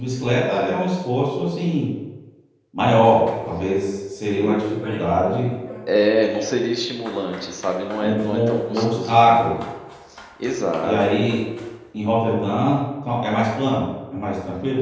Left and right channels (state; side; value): identical; both; correlation 1.00